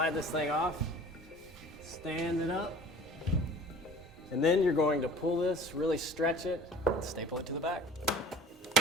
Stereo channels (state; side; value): normal; both; correlation 0.45